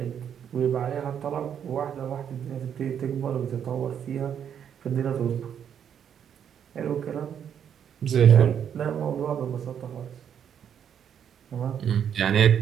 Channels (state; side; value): quieter; left; 8.6 dB